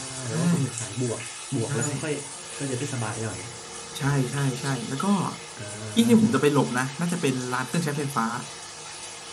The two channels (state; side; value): identical; both; correlation 1.00